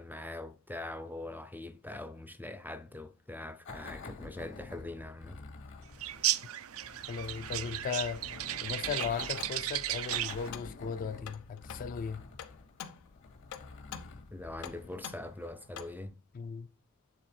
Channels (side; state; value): both; normal; correlation 0.15